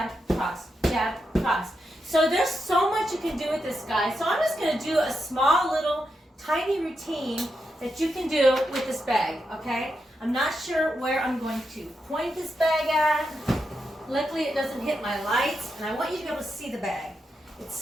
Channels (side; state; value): both; normal; correlation 0.85